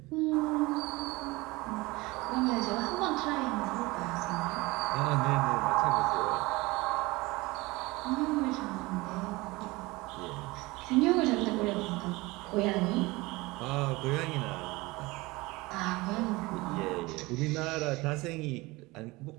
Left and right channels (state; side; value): quieter; left; 22.1 dB